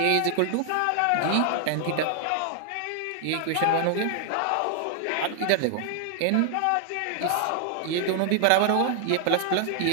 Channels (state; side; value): different; both; correlation 0.00